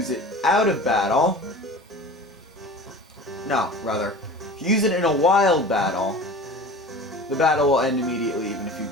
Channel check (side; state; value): both; normal; correlation 0.38